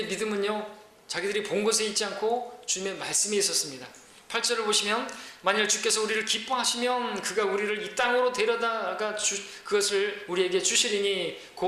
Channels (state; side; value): identical; both; correlation 1.00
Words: 믿음은요, 자기들이 본 것에 있지 않고 주님의 말씀이 있었습니다. 8절을 보시면, 만일 주께서 우리를 기뻐하시면 그가 우리를 이 땅으로 데려다가 그것을 우리에게 주시리니